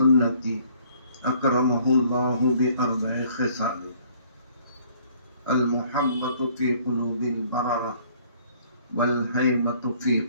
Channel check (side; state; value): both; inverted; correlation -0.59